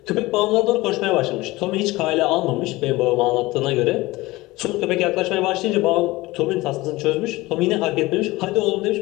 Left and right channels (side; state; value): right; quieter; 20.0 dB